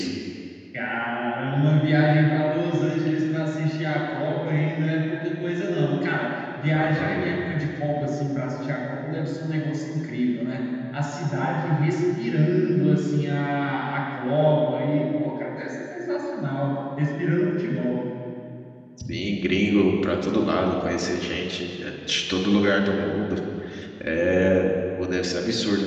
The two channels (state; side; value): identical; both; correlation 1.00